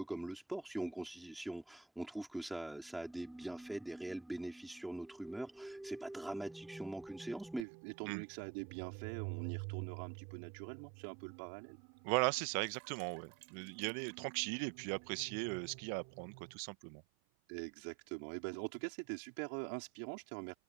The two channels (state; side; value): drops out; left; at 7.7 s